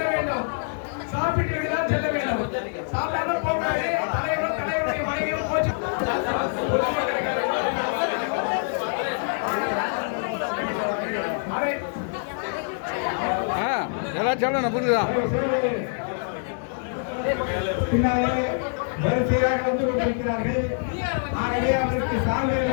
வேண்டும். சாப்பிட்டு விட்டுதான் செல்ல வேண்டும். சாப்பிடாம போகாது. தலைவருடைய மனைவியும் போச்சு. எல்லாம் சொல்லணும் புரியுதா? பின்னாலே வரிசையாக வந்து கொண்டிருக்கிறார்கள். ஆகவே அவருக்கு சால்வை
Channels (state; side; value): silent; right; digital silence